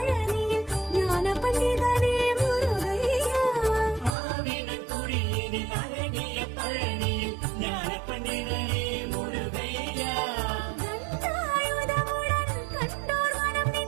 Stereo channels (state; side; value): drops out; left; at 4.1 s